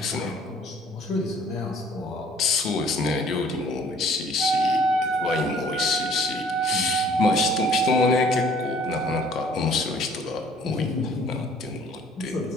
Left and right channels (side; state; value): both; normal; correlation 0.55